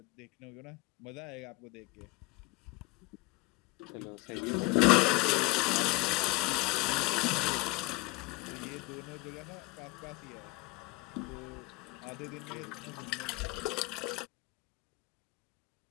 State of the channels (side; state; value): right; quieter; 24.1 dB